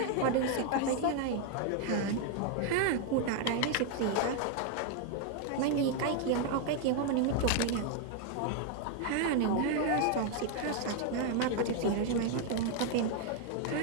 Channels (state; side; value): different; both; correlation 0.00